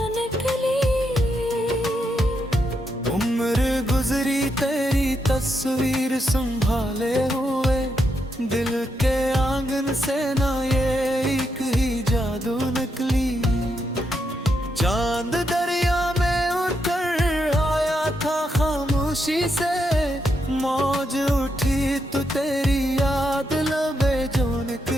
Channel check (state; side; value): normal; both; correlation 0.81